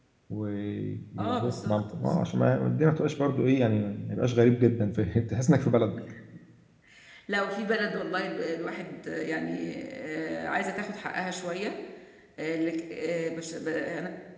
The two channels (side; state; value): both; identical; correlation 1.00